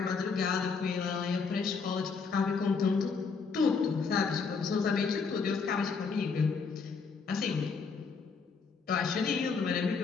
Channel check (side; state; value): right; quieter; 5.1 dB